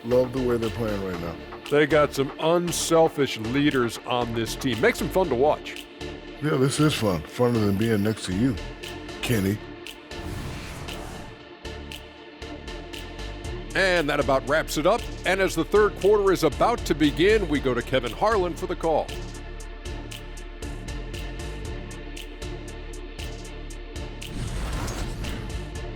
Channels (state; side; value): identical; both; correlation 1.00